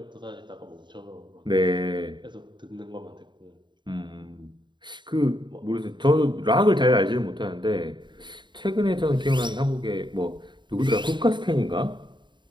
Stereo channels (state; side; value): late; left; 0.22 ms